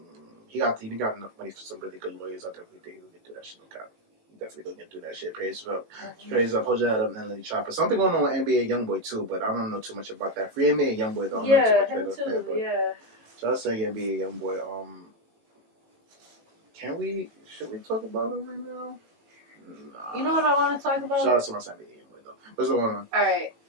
He got enough money for some really good lawyers. I definitely think he'll get through that shit. No cap. Definitely gonna get through that shit. Praise up. Hold your head up, Untitled Chapter. Something going on with NBA YoungBoy too, but I don't know too much about that. Free NBA YoungBoy though. Yeah, him too. Yeah. So I was saying NBA YoungBoy. Should we talk about him right now? Nah. You know what I want to talk about? Shout out to my NBA YoungBoy though. What's going on? All right.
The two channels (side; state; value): left; late; 18 ms